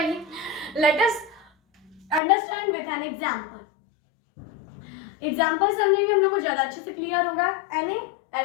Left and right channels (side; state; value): right; drops out; at 2.2 s